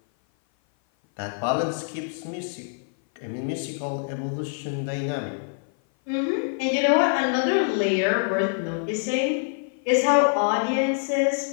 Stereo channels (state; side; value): silent; right; 57 dB below the other